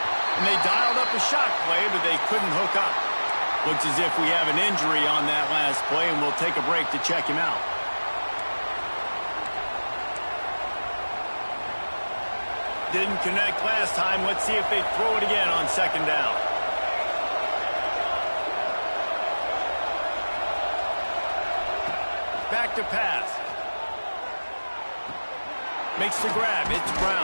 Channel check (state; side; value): inverted; both; correlation -1.00